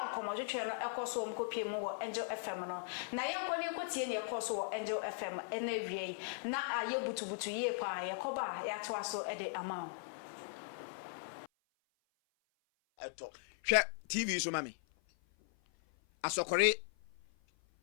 nkomodwetwe no ekoso omkopie mu wo Angel FM no na yenkoni kotie ne ekoso wo Angel FM ene wie na aye butubutu ye pa yekoba yatoa so ede amount hwe TV so mami Asokore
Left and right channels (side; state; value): right; silent; 52 dB below the other